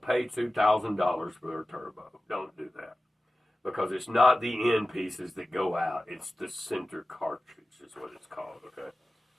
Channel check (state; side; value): normal; both; correlation 0.95